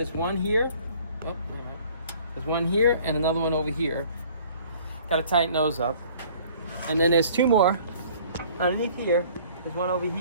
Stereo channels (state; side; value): inverted; both; correlation -0.53